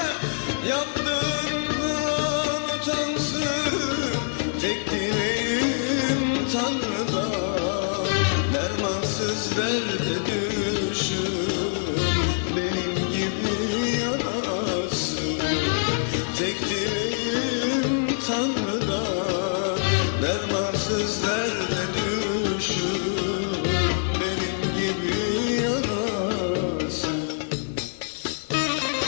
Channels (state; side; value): silent; right; digital silence